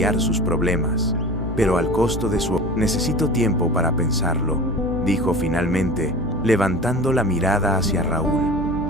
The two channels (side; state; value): both; normal; correlation 0.36